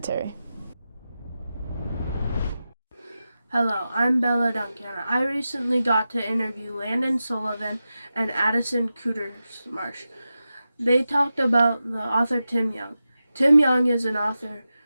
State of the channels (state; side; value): inverted; both; correlation -0.92